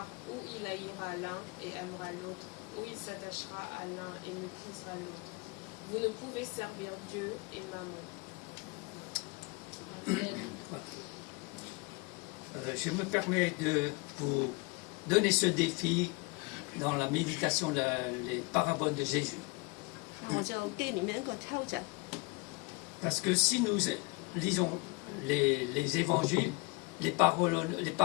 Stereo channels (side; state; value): right; quieter; 28.4 dB